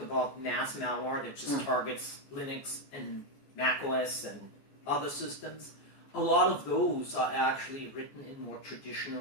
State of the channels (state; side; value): late; right; 14 ms